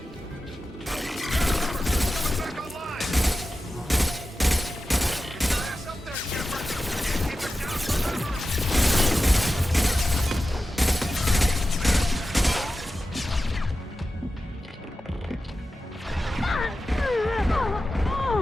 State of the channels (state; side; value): normal; both; correlation 0.93